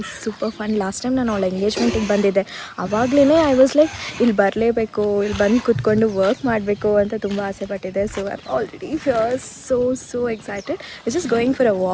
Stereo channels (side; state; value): both; identical; correlation 1.00